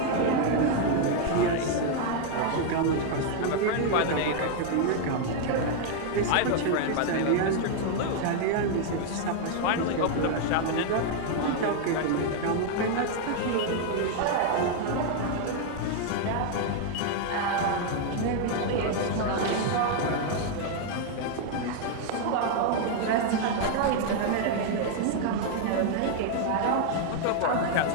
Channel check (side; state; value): both; different; correlation 0.00